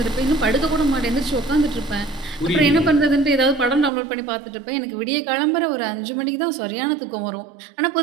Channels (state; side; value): drops out; left; at 3.9 s